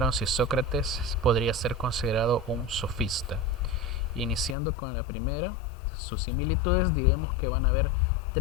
si Sócrates podría ser considerado un sofista. Iniciando con la primera, sus similitudes, diremos que van a haber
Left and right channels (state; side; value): drops out; right; at 4.5 s